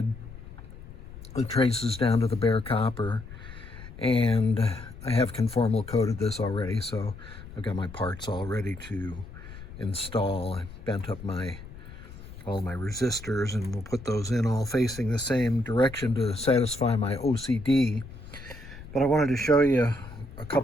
the traces down to the bare copper, and I have conformal coated this already, so I've got my parts all ready to install. I bent up all my resistors, and we'll put those in all facing the same direction to satisfy my OCD. But I wanted to show you a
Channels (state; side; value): noise; left; rumble, 15 dB below the sound